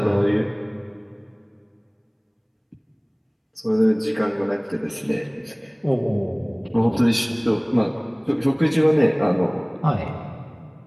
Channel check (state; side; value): identical; both; correlation 1.00